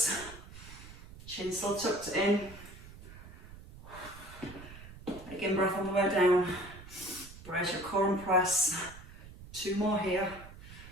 Chin still tucked in. Again, breath on the way down. Brace your core and press. 2 more here.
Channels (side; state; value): right; noise; rumble, 16 dB below the sound